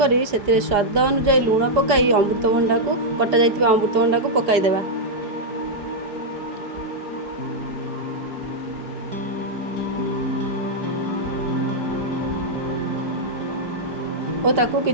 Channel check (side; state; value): left; late; 4.9 ms